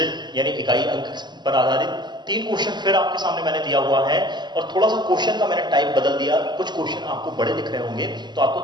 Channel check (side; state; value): left; late; 0.21 ms